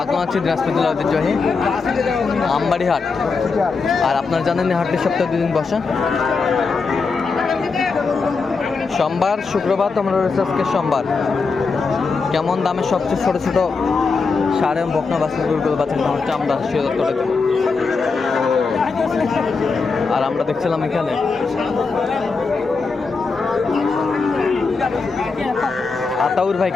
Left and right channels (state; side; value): quieter; right; 4.6 dB